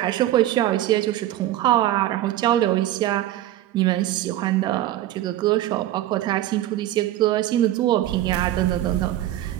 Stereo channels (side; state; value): left; quieter; 14.0 dB